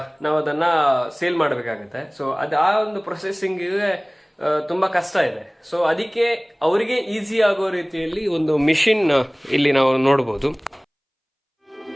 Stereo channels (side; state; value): both; identical; correlation 1.00